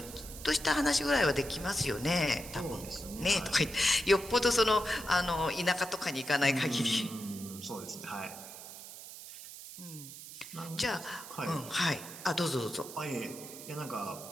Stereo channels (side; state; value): right; noise; hiss, 13 dB below the sound